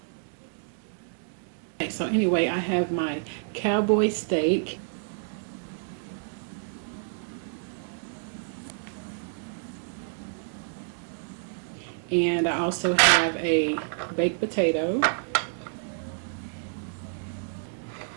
Okay, so anyway, I have my cowboy steak. And I also have a baked potato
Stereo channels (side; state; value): left; silent; digital silence